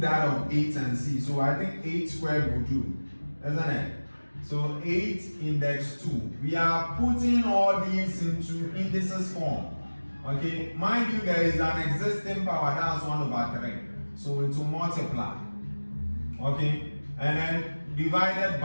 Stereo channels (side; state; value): both; inverted; correlation -1.00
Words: of 8 and see. So I think 8 squared will do, isn't it? So 8 index 2. We are putting all these into indices form. Okay, mind you, there is an existing power, that's 1 over 3. So it will multiply. Okay, and then divided